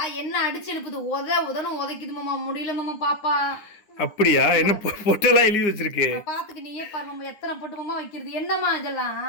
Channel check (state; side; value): late; right; 9.8 ms